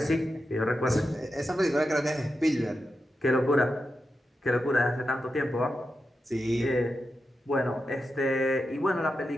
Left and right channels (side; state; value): both; normal; correlation 0.89